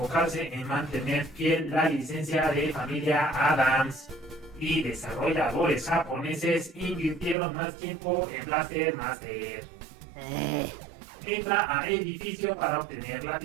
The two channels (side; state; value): left; drops out; at 7.4 s